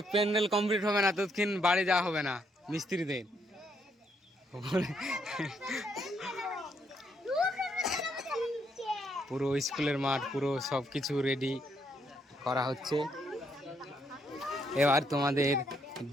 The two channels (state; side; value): normal; both; correlation 0.74